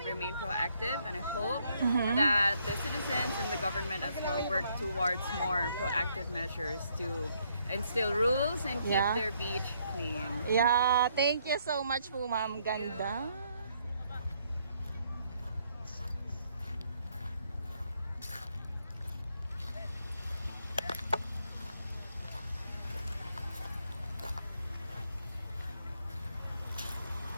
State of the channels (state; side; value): inverted; both; correlation -0.71